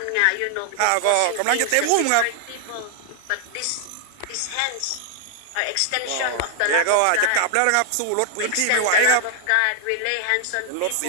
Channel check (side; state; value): both; different; correlation 0.00